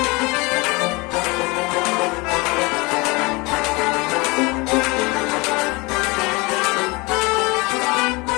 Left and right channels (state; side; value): quieter; right; 25.6 dB